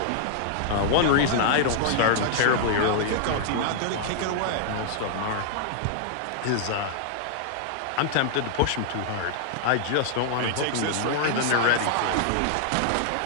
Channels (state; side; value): different; both; correlation -0.01